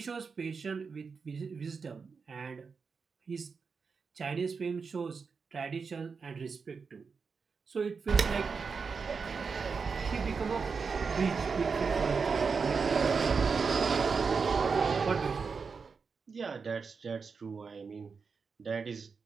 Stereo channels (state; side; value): quieter; left; 5.2 dB